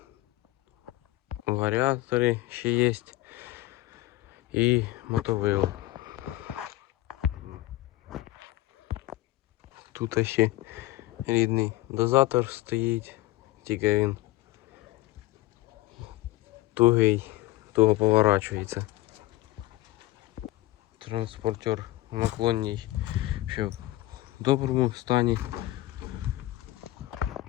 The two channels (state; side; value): quieter; right; 17.0 dB